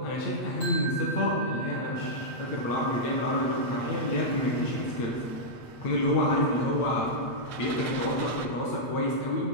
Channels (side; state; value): right; late; 8.5 ms